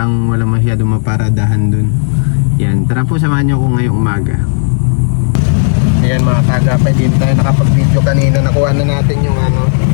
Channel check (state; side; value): silent; right; 73 dB below the other